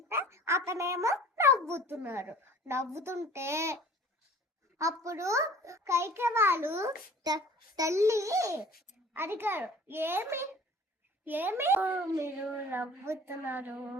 అతనేమో నవ్వుతుంటే అప్పుడు కైకే వాళ్ళు తల్లి అడిగారు, ఏమి మీరు నవ్వుతున్నారు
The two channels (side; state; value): both; normal; correlation 0.47